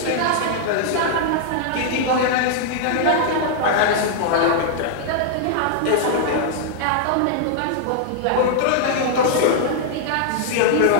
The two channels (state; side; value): different; both; correlation -0.01